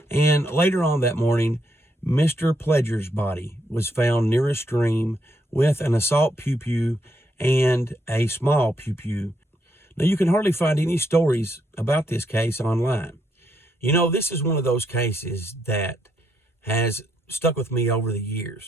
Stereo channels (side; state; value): both; normal; correlation 0.77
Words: And later on that morning, Mr. Pledger's body was found near a stream with an assault pew-pew and a small pew-pew. Now, you can hardly find any stories about this case online. You know, this is one of those cases that has stuck with me over the